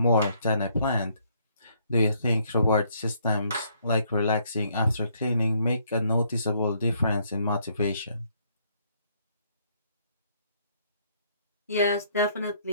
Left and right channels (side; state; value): both; inverted; correlation -0.68